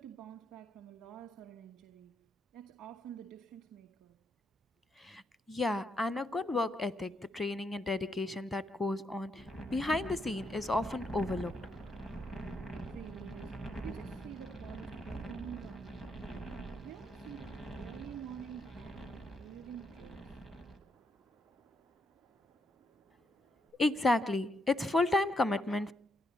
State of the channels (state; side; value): normal; both; correlation 0.78